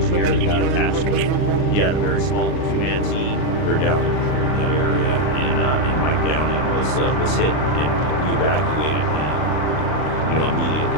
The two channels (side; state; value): right; late; 39 ms